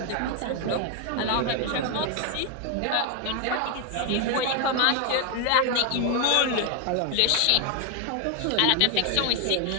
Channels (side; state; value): both; different; correlation 0.01